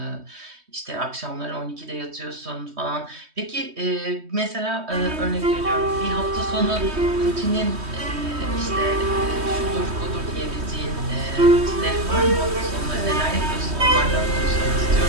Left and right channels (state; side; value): late; left; 3.2 ms